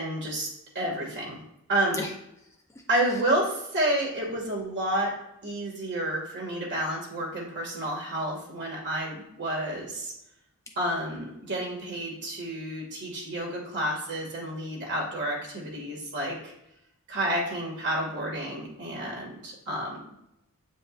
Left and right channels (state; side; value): normal; both; correlation 0.08